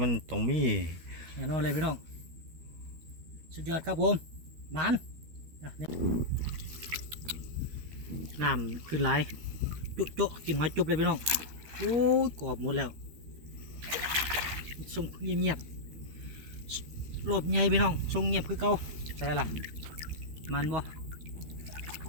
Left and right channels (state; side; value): late; left; 13 ms